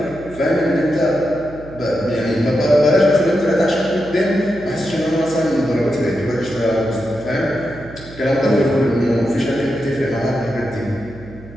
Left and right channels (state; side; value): noise; right; hum, 18 dB below the sound